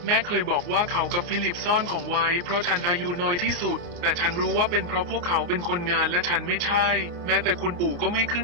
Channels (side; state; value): left; late; 29 ms